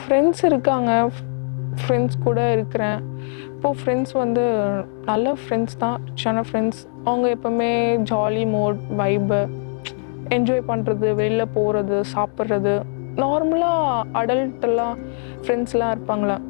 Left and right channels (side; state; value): right; silent; 65 dB below the other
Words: ஃப்ரெண்ட்ஸ் இருக்காங்க, ஃப்ரெண்ட்ஸ் கூட இருக்கிறேன். இப்போது ஃப்ரெண்ட்ஸ் வந்து நல்ல ஃப்ரெண்ட்ஸ் தான், சின்ன ஃப்ரெண்ட்ஸ். அவங்க எப்போவுமே ஜாலி மோட், வைபு, என்ஜாய் பண்ணுறது, வெளியில் போகிறது, சாப்பிட்றது. நார்மலாக அடல்ட்டெல்லாம் ஃப்ரெண்ட்ஸ்லாம் இருப்பாங்களே,